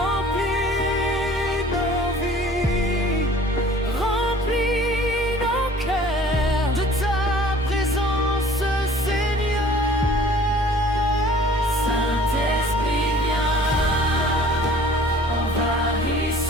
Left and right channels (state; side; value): normal; both; correlation 0.50